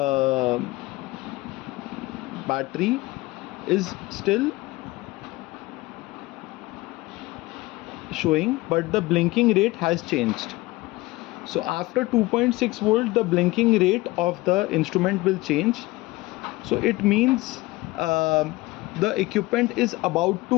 battery is still showing, but the blinking rate has changed. So after 2.6 volt, the blinking rate of the instrument will change. So it means the equipment is about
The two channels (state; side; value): quieter; right; 20.5 dB